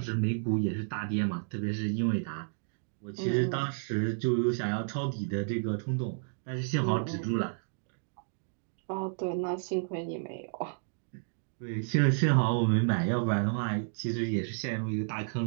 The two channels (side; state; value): left; silent; digital silence